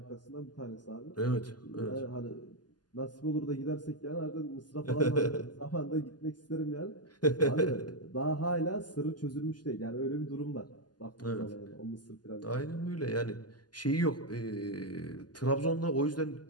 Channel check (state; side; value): late; right; 0.70 ms